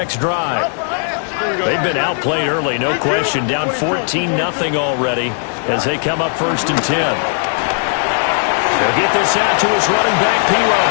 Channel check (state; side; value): silent; right; digital silence